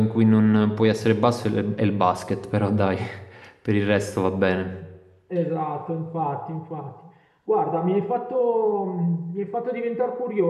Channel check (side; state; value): both; identical; correlation 1.00